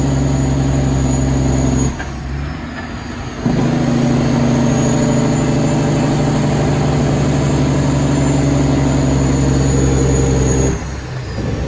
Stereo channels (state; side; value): identical; both; correlation 1.00